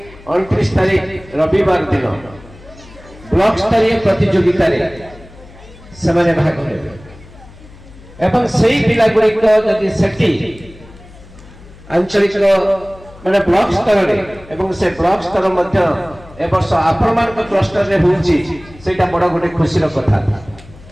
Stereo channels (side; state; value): left; noise; hum, 21 dB below the sound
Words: 29 तारीख रविवार दिन ब्लॉक स्तरीय प्रतियोगिता रे से भाग नेबे एवं सेही पिला गुड़िक जदि सेठी आंचलिक माने ब्लॉक स्तर रे एवं से ब्लॉक स्तर मध्य ए वर्ष आप्रमाण क्लस्टर रे होउची सेटा बड़ गोटे खुशी रो कथा